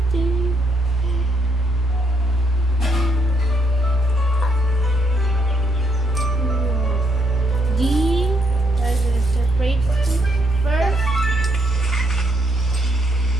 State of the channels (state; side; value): normal; both; correlation 0.74